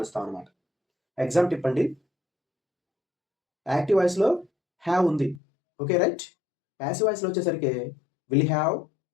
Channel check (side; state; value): right; drops out; at 5.4 s